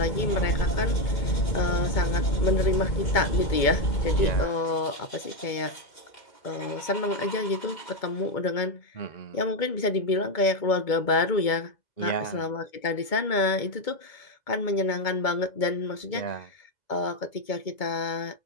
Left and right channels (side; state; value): right; late; 2.2 ms